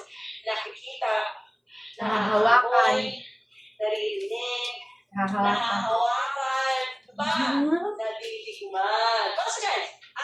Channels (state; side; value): identical; both; correlation 1.00